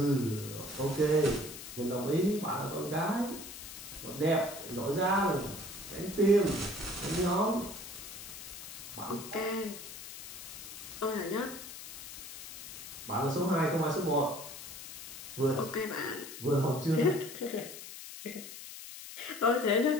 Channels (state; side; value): noise; left; hiss, 11 dB below the sound